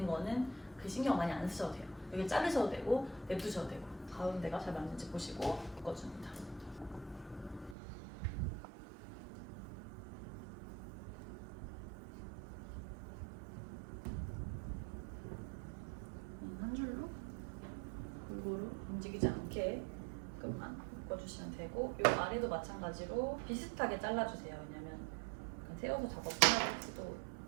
거는 그 신경 많이 안 쓰셔도 돼요. 여기 자르셔도 되고 냅두셔도 되고 가운데가 잘 맞는지 보시고 묶어줍니다. 한 줄로 골고루 움직이지 않게 끝만 묶어주시면 되고 이 아래도 마찬가지로 비슷하게 잘라주세요. 왜냐면 세워서 작업할 수도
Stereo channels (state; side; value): drops out; left; at 7.8 s